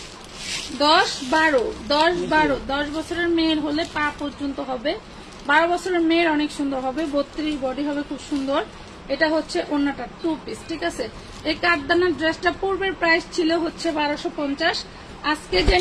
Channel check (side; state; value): both; identical; correlation 1.00